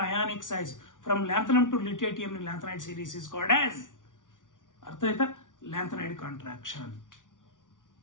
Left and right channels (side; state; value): right; late; 0.88 ms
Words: size from lanthanum to lutetium in lanthanide series is called as, ಅರ್ಥ ಆಯ್ತಾ? Lanthanide contraction.